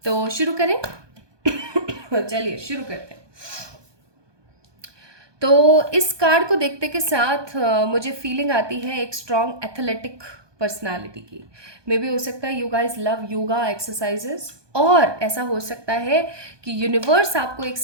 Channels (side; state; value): left; late; 1.2 ms